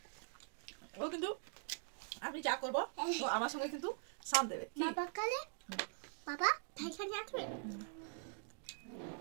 ও কিন্তু আমি যা করবো ও আমার সঙ্গে কিন্তু সাথ দেবে। বাবা কালে বাবা ঠাইখানে আসবে।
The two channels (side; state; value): left; silent; digital silence